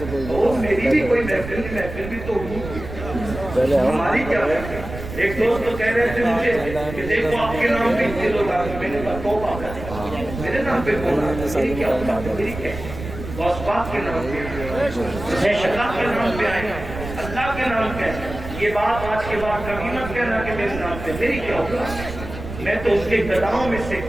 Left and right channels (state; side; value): noise; right; rumble, 10 dB below the sound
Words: میری بھی کوئی محفل بھی تو ہوئی, ہماری کیا ہے. ایک دوست تو کہہ رہے تھے مجھے کہ دیکھو آپ کے نام پہ اتنے لوگ آ گئے. میں نے کہا توبہ کر, میرے نام پہ کون آ گیا, میری کیا ہوتا, میری کیا غوث پاک کے نام پہ, اللہ کے نام پہ آئے, اللہ کے نام پہ. یہ بات آج کے بعد کبھی مت کہنا کہ میرے نام پہ, میری کیا ہوگا. میں تو اس کے گداؤں میں سے